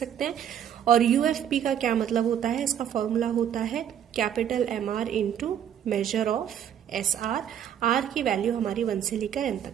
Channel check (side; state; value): left; quieter; 9.6 dB